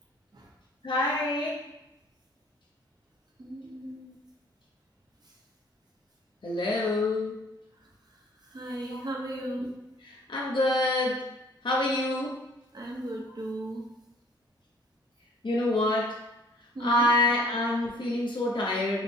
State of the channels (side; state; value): both; normal; correlation 0.55